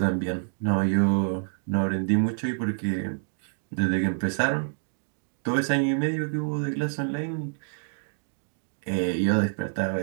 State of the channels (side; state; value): left; silent; digital silence